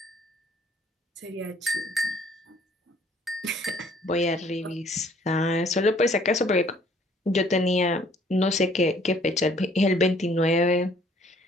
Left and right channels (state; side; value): normal; both; correlation 0.60